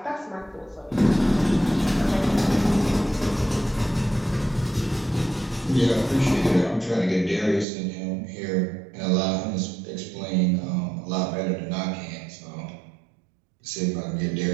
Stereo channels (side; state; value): left; drops out; at 7.7 s